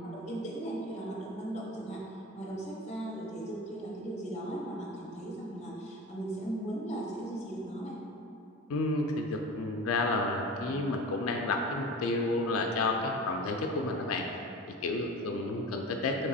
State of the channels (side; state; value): both; normal; correlation 0.33